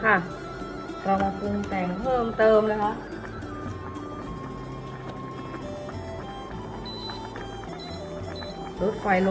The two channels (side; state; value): both; identical; correlation 1.00